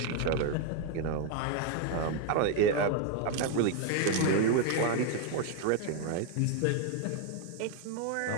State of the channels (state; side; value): different; both; correlation 0.01